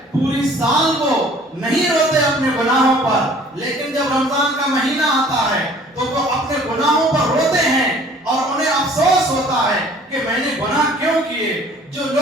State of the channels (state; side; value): normal; both; correlation 0.52